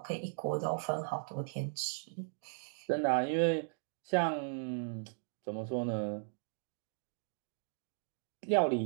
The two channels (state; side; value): silent; left; digital silence